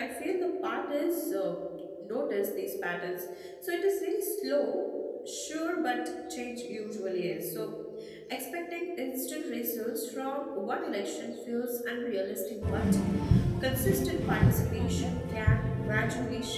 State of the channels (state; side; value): identical; both; correlation 1.00